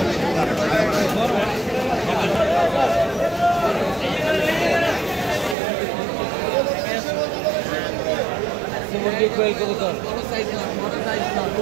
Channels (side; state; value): left; drops out; at 5.6 s